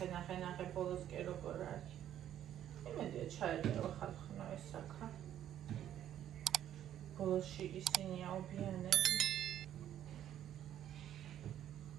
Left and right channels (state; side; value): quieter; left; 11.1 dB